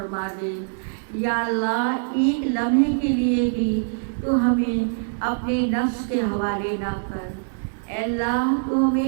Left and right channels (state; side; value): silent; left; digital silence